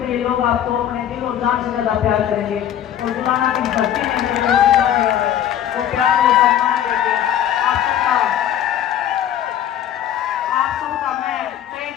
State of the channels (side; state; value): right; quieter; 10.5 dB